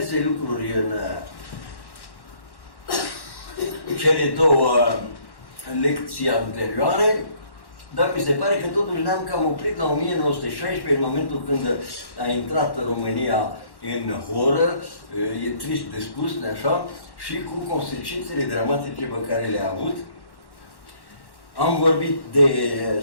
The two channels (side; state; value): right; late; 1.1 ms